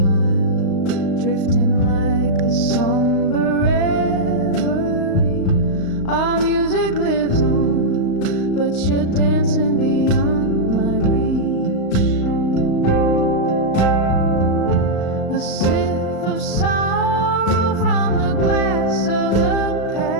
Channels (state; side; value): late; right; 35 ms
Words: drifting like a somber reverie. but you're dancing beyond my reach. A sip of sorrow from the glass of the